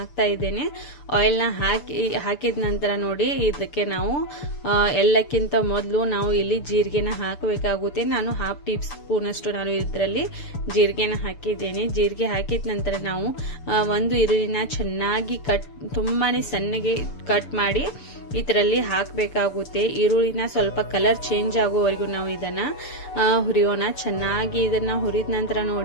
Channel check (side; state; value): right; late; 6.9 ms